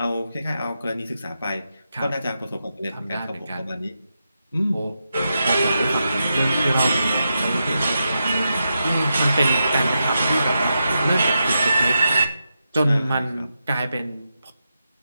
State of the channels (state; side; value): inverted; both; correlation -0.87